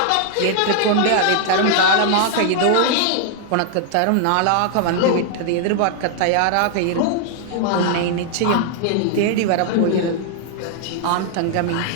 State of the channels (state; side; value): different; both; correlation 0.00